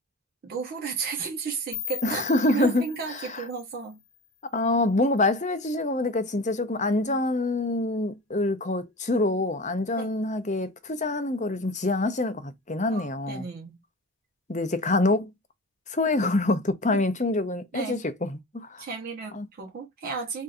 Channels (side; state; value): both; normal; correlation 0.35